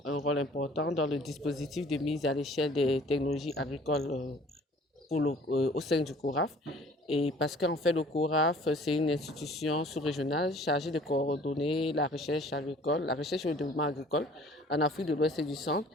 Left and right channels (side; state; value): both; normal; correlation 0.52